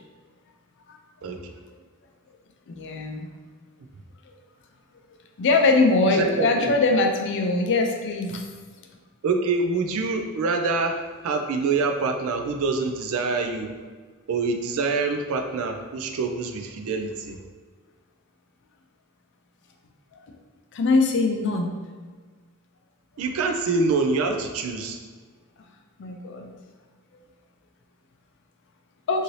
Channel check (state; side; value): normal; both; correlation 0.13